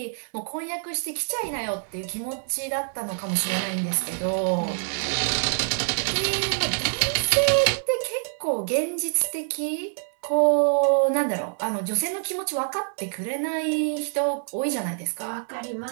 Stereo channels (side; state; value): left; silent; digital silence